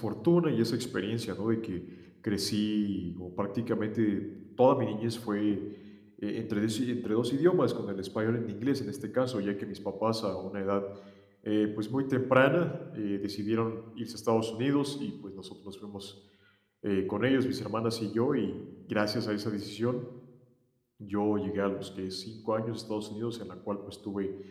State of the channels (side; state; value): both; identical; correlation 1.00